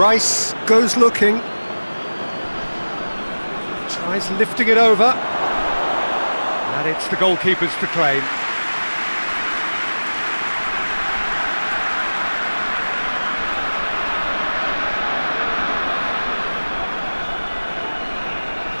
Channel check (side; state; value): both; inverted; correlation -1.00